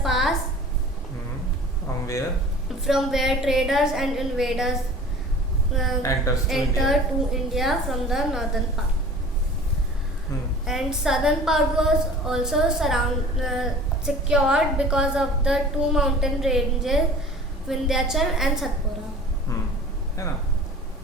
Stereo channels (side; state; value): both; normal; correlation 0.43